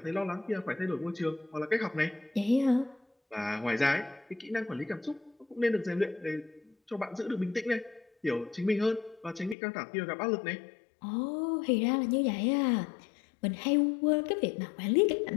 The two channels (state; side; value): drops out; right; at 9.6 s